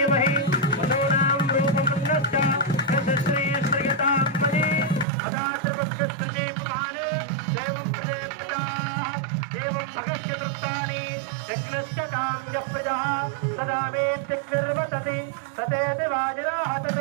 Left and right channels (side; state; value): left; drops out; at 5.1 s